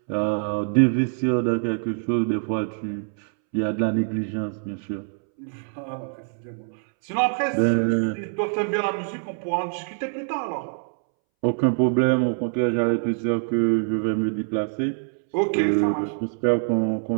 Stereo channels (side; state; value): left; silent; 62 dB below the other